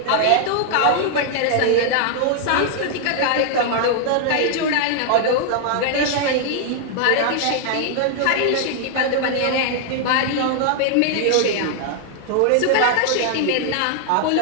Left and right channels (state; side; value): different; both; correlation 0.00